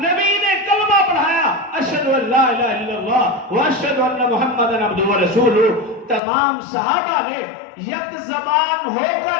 نے کلمہ پڑھایا، اشہد ان لا الہ الا اللہ واشہد ان محمد عبدہ ورسولہ۔ تمام صحابہ نے یک زبان ہو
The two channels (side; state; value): right; drops out; at 6.2 s